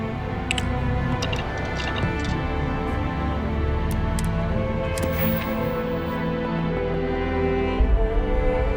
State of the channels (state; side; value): identical; both; correlation 1.00